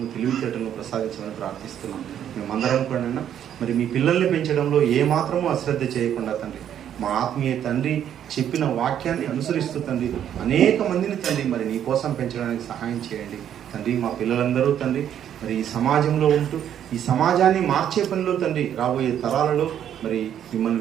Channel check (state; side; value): quieter; left; 9.9 dB